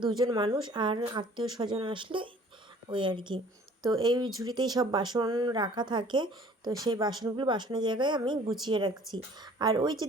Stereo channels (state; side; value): normal; both; correlation 0.53